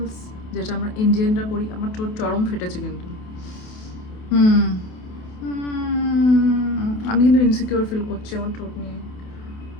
যেটা আমরা ইন্ডিয়ানরা করি। আমার ঠোঁট চরম ফেটেছে কিন্তু, আমি কিন্তু ইনসিকিউর ফিল করছি আমার ঠোঁট নিয়ে।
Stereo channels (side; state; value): right; late; 28 ms